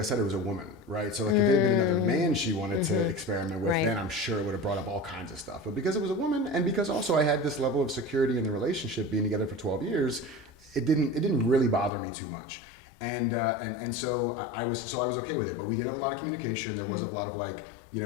said, it was a woman, right? So like if it had been another man she wanted to experiment with, then I'm sure it would have brought up all kinds of stuff. But because it was a woman, and because also I had this level of security in the relationship, being together for 12 years, it didn't really bother me too much. And so I was okay with it. But we did have a lot of communication. There was a lot of like,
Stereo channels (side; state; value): right; drops out; at 11.9 s